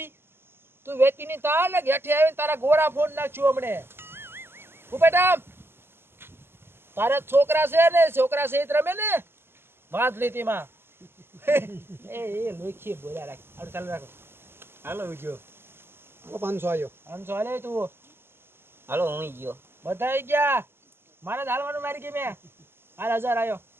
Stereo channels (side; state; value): left; late; 0.11 ms